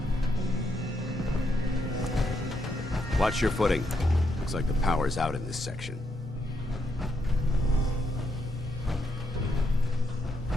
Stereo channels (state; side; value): normal; both; correlation 0.78